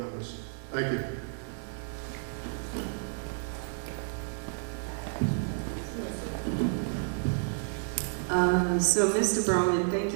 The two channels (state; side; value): silent; left; 57 dB below the other